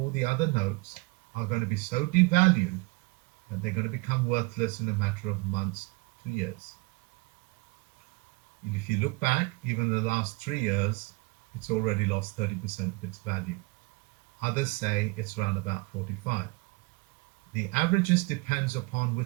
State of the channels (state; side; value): quieter; left; 25.4 dB